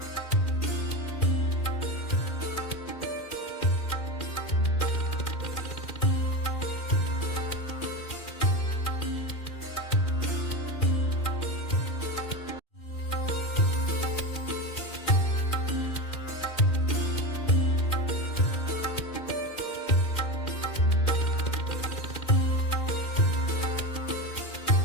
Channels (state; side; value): late; right; 2.4 ms